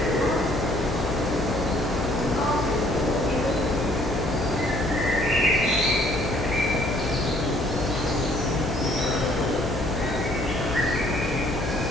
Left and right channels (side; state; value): left; noise; hum, 5 dB below the sound